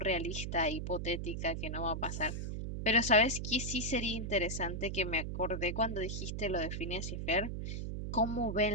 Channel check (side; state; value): right; noise; hum, 4 dB below the sound